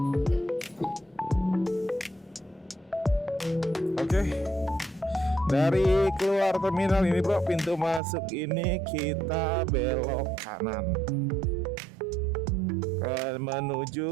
Oke. Dari keluar terminal ini, bro, pintu masuk ini kita belok kanan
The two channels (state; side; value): drops out; left; at 8.0 s